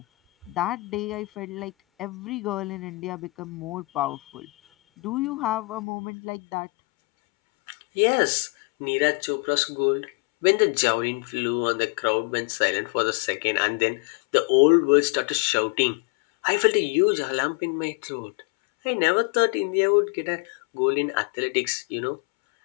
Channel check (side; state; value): right; drops out; at 5.8 s